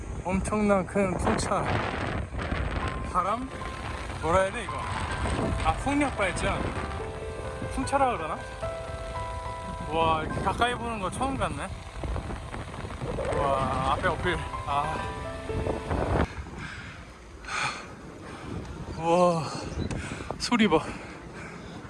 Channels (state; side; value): identical; both; correlation 1.00